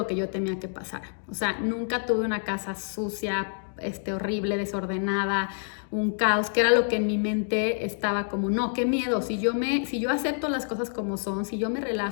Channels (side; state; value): right; silent; 60 dB below the other